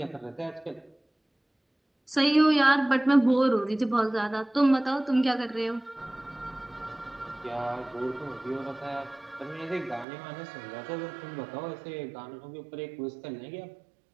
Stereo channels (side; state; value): left; drops out; at 10.1 s